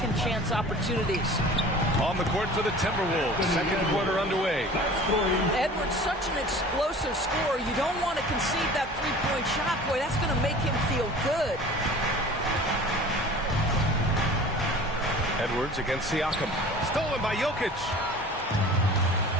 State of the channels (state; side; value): normal; both; correlation 0.42